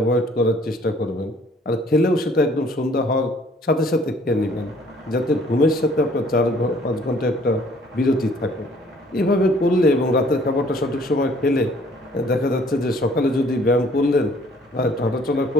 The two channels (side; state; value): both; normal; correlation 0.59